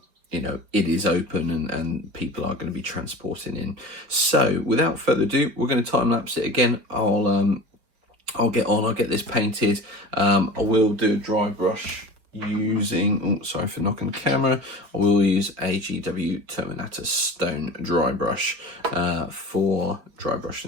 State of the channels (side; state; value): left; late; 5.0 ms